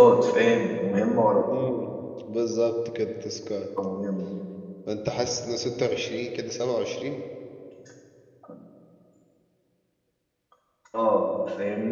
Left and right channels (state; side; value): identical; both; correlation 1.00